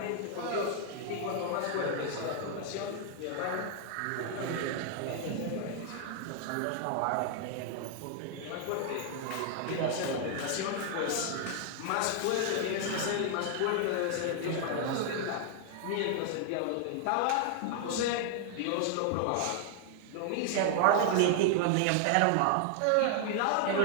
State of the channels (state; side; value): different; both; correlation 0.00